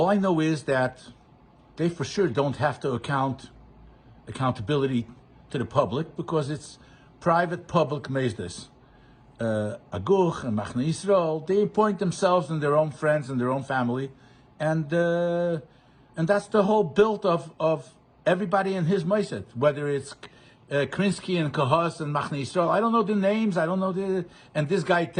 I know is that they for sure don't have to accountability to the public, because it's private public Meisdes. Aguch and Machne Yisrael, they appoint themselves and their own friends and their own family, and that's the whole build of everybody in his Mossad, whether it's Krinsky and Kahos and Machne Yisrael. I don't know the names, and this guy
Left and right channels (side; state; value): both; identical; correlation 1.00